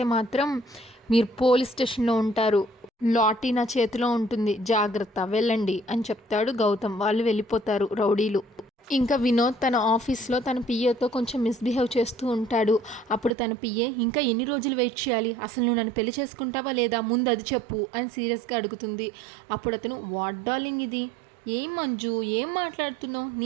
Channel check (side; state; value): left; drops out; at 13.3 s